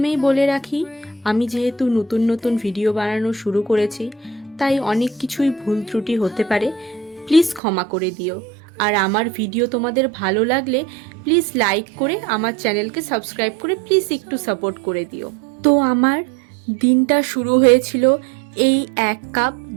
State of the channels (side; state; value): left; drops out; at 7.6 s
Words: বলে রাখি, আমি যেহেতু নতুন নতুন ভিডিও বানানো শুরু করেছি, তাই অনেক কিছুই ভুল ত্রুটি হতে পারে, প্লিজ ক্ষমা করে দিও। আর আমার ভিডিও তোমাদের ভালো লাগলে প্লিজ লাইক করে আমার চ্যানেলকে সাবস্ক্রাইব করে প্লিজ একটু সাপোর্ট করে দিও। তো আমার দিনটা শুরু হয়েছিল এই 1 কাপ